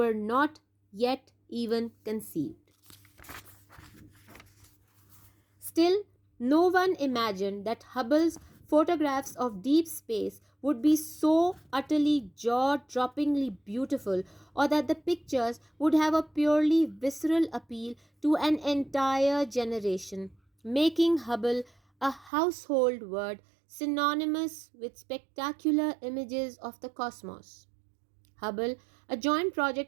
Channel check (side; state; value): left; drops out; at 22.3 s